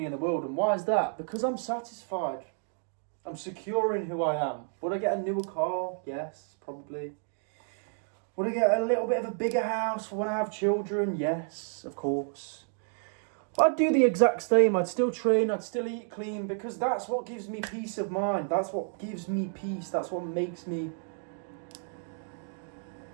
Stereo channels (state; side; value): silent; left; 57 dB below the other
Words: in the world. And why is that? Because I'm satisfied. I'm secure in who I am. Would I get a newer car? Yes, probably. Would I get a little bit of a bigger house for when I have children? Yes, of course. I'd do the exact same. I'd still train. I'd still eat clean, because that's what gives me peace of mind. That's what gives me peace. That's what makes me